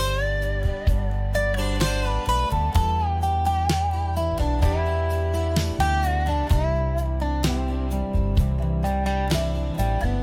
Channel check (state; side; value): identical; both; correlation 1.00